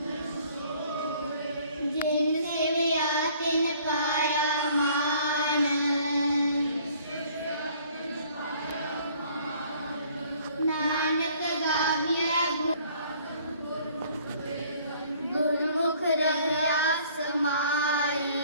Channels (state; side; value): inverted; both; correlation -0.57